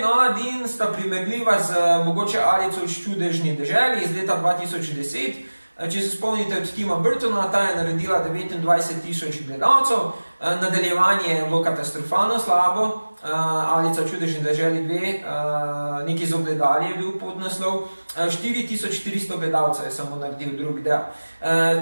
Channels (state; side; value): inverted; both; correlation -1.00